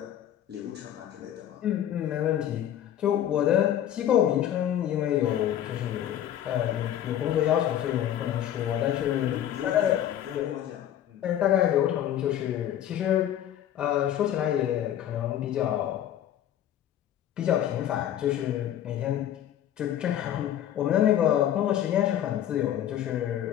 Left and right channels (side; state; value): right; quieter; 11.1 dB